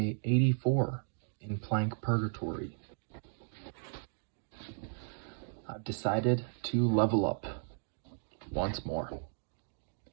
84 in plank purgatory. I've decided to level up once more.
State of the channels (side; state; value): left; silent; digital silence